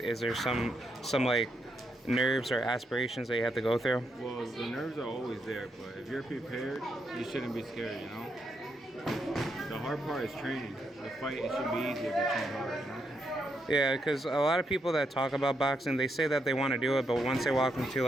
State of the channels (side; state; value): both; normal; correlation 0.80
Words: there some nerves or aspirations that you have to go through? Well, the nerves are always there, but if you're prepared, you shouldn't be scared, you know? The hard part is training. The fight, it should be easier if you train hard, you know? Yeah, because a lot of people that talk about boxing, they say that they want to do it, but once they walk